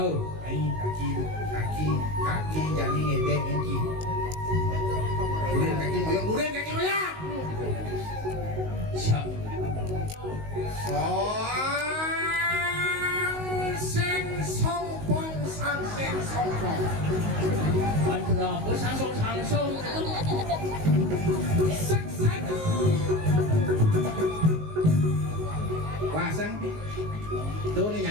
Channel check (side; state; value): left; late; 19 ms